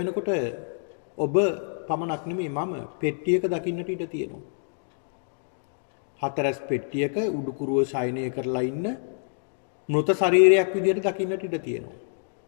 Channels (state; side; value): silent; right; digital silence